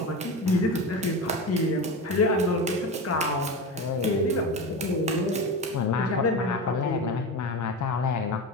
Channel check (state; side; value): normal; both; correlation 0.24